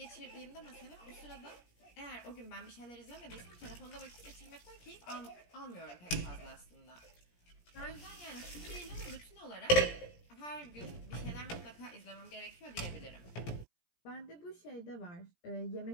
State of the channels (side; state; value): right; late; 17 ms